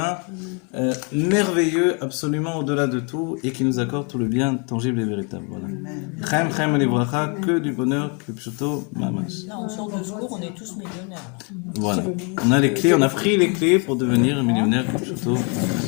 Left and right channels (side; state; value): right; quieter; 35.3 dB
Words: merveilleux, absolument au-delà de tout, et qui nous accorde tout le bien tangible et véritable. Voilà. Chaim et les Bracha, que du bonheur, que plutôt mamash. Là, on sort de ce cours, on est tous millionnaires. Voilà. On a les clés, on a pris les clés pour devenir millionnaire, que plutôt.